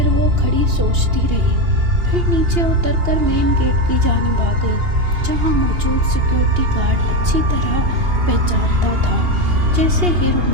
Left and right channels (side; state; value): left; late; 2.8 ms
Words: وہ کھڑی سوچتی رہی، پھر نیچے اتر کر مین گیٹ کی جانب آ گئی، جہاں موجود سیکیورٹی گارڈ اچھی طرح پہچانتا تھا۔ جیسے ہی